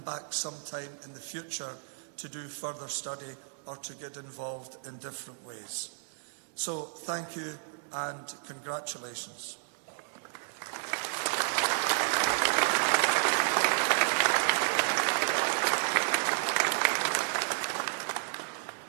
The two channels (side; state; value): left; silent; 57 dB below the other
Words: back sometime in the future to do further study or to get involved in different ways. So thank you and congratulations.